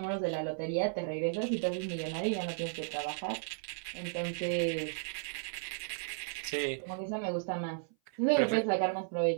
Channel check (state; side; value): silent; left; 55 dB below the other